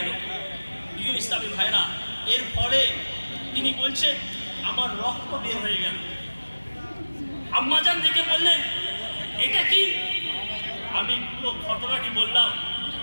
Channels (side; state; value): both; inverted; correlation -1.00